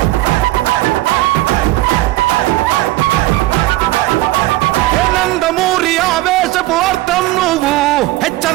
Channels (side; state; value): left; quieter; 17.8 dB